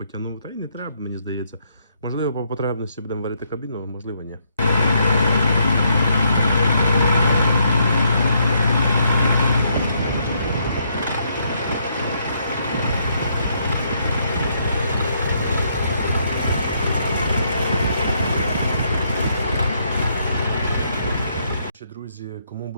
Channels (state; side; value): inverted; both; correlation -0.74